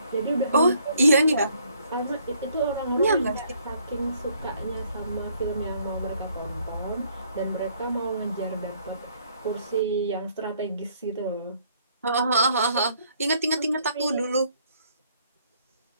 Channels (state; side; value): inverted; both; correlation -0.65